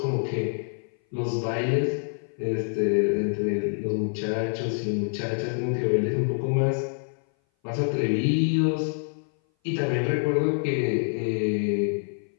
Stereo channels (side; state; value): right; silent; 58 dB below the other